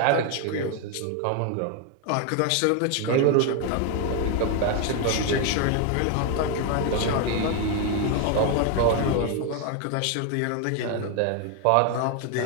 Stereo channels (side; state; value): both; different; correlation 0.01